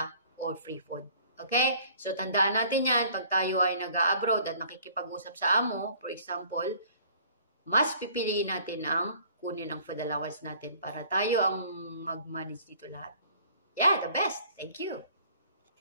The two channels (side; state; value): both; inverted; correlation -0.54